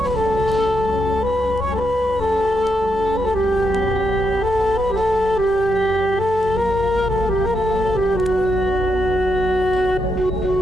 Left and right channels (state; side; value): normal; both; correlation 0.81